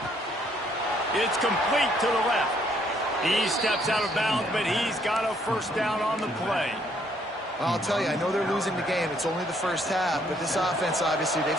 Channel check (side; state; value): both; normal; correlation 0.67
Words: It's complete to the left. He steps out of bounds, but he's got a first down on the play. I'll tell you, I know they're losing the game. It's only the first half, but this offense, obviously, they've